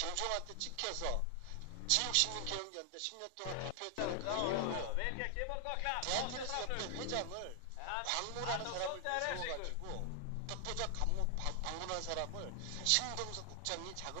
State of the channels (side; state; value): both; different; correlation 0.00